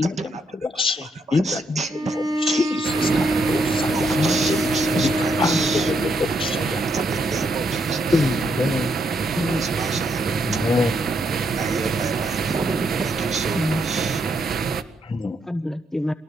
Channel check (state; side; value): normal; both; correlation 0.76